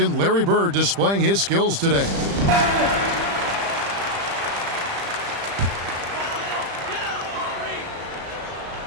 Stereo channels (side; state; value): left; late; 35 ms